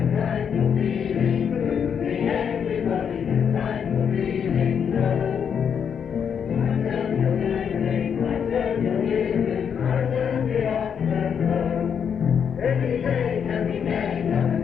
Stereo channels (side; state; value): right; quieter; 7.5 dB